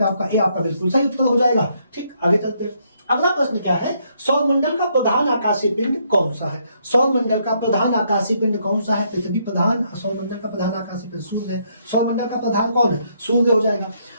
आपका ए आपका बिल्कुल सही उत्तर हो जाएगा। ठीक, आगे चलते हैं। अगला प्रश्न क्या है, सौरमंडल का प्रधान आकाशीय पिंड कौन सा है। सौरमंडल का प्रधान आकाशीय पिंड कौन सा है, पृथ्वी प्रधान, सौरमंडल का प्रधान आकाशीय पिंड सूर्य है। सौरमंडल का प्रधान कौन है, सूर्य हो जाएगा।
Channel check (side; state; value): both; inverted; correlation -0.72